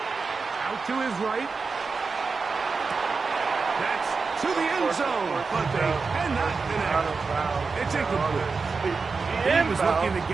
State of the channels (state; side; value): quieter; left; 4.6 dB